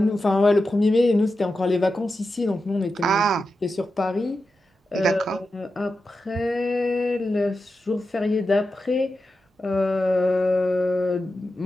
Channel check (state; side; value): normal; both; correlation 0.90